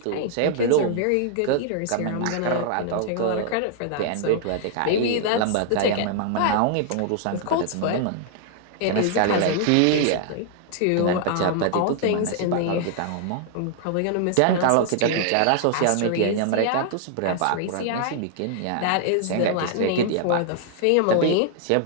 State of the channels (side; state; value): both; different; correlation 0.00